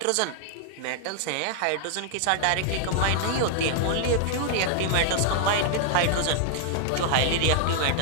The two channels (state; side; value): different; both; correlation -0.01